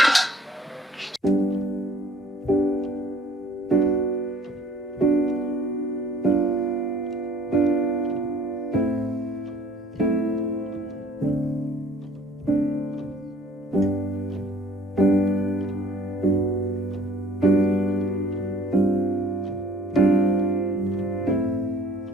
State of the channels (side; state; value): both; normal; correlation 0.54